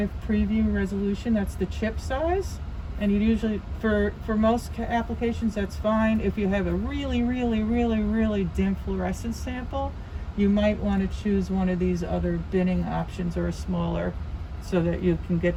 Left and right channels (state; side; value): identical; both; correlation 1.00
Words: preview resolution. That's the chip size. And you usually, for most applications, that's fine. If you have a really, really, really, really dim fluorescence sample, you might want to choose one of these other binning options or a smaller, so that you can